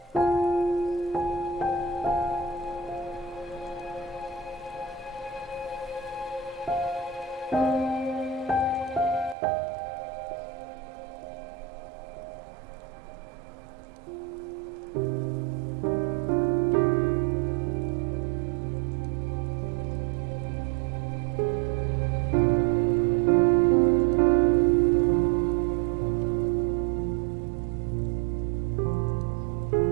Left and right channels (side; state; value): left; drops out; at 9.3 s